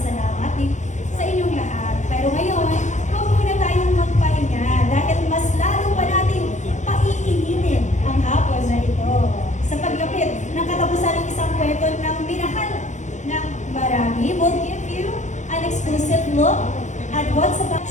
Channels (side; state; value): right; late; 0.35 ms